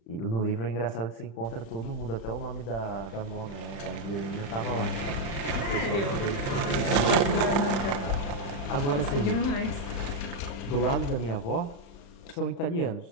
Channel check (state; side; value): late; right; 35 ms